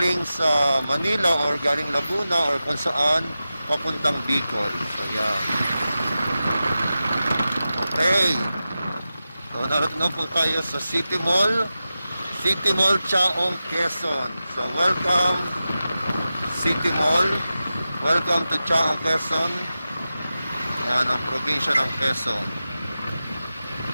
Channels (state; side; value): inverted; both; correlation -0.93